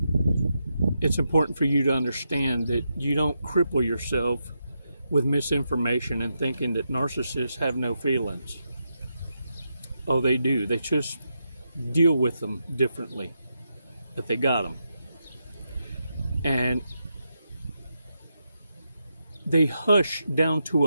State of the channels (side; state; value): both; inverted; correlation -0.84